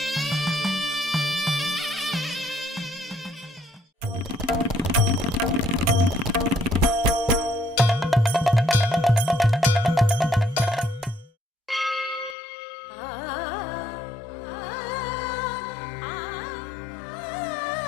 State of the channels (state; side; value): drops out; right; at 12.4 s